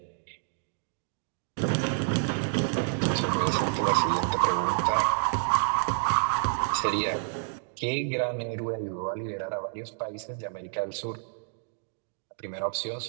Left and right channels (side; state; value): left; silent; digital silence